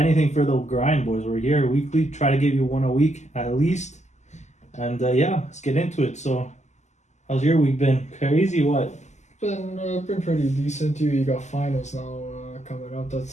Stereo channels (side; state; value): right; late; 0.34 ms